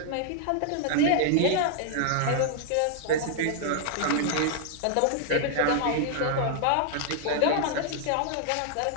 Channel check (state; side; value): different; both; correlation -0.01